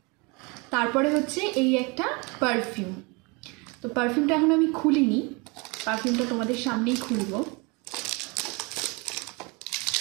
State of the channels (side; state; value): left; quieter; 28.8 dB